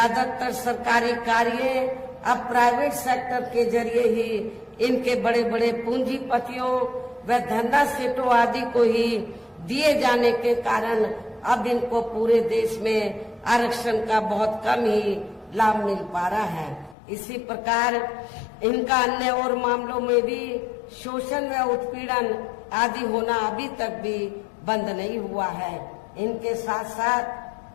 सरकारी कार्य अब प्राइवेट सेक्टर के जरिए ही इनके बड़े बड़े पूंजीपतियों व धंधा सेठों आदि को ही दिए जाने के कारण अब इनको पूरे देश में आरक्षण का बहुत कम ही लाभ मिल पा रहा है। इसी प्रकार इनका अन्य और मामलों में भी शोषण व उत्पीड़न आदि होना अभी तक भी बंद नहीं हुआ है। इनके साथ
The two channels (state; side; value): drops out; right; at 16.9 s